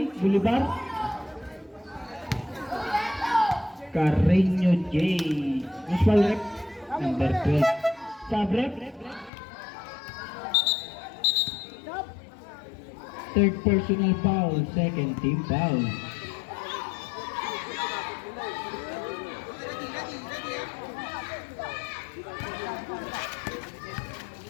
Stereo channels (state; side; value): drops out; right; at 9.3 s